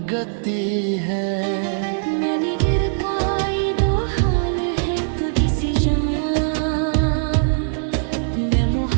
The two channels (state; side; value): silent; left; digital silence